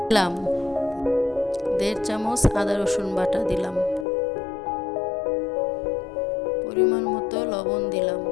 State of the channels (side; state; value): right; drops out; at 4.0 s